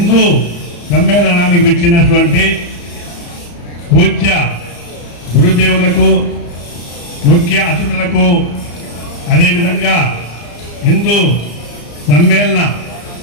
సమ్మేళనానికి వచ్చినటువంటి పూజ్య గురుదేవులకు, ముఖ్య అతిథులకు, అదేవిధంగా హిందూ సమ్మేళన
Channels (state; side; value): late; right; 34 ms